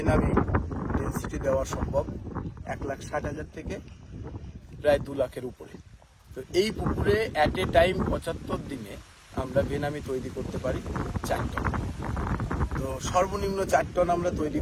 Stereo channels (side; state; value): both; identical; correlation 1.00